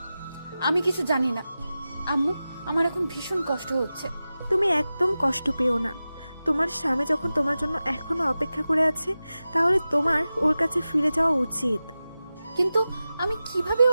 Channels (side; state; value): both; inverted; correlation -0.94